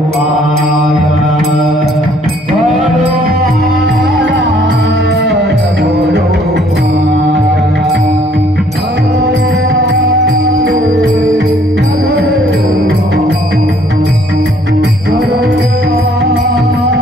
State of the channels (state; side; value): normal; both; correlation 0.62